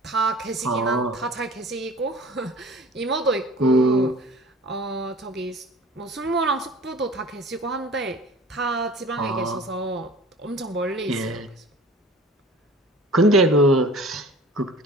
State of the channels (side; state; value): both; normal; correlation 0.43